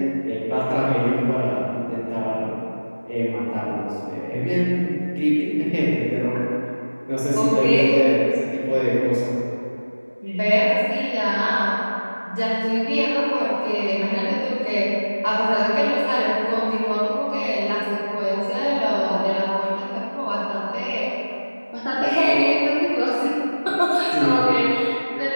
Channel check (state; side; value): inverted; both; correlation -1.00